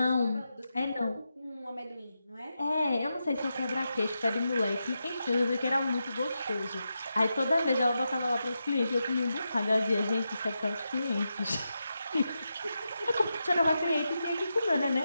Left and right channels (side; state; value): both; inverted; correlation -0.87